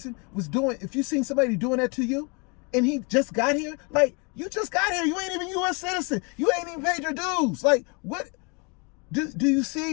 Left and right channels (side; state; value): right; quieter; 32.2 dB